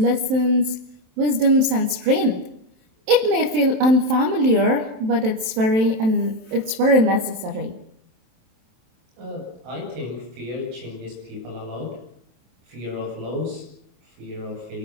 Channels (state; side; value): late; left; 27 ms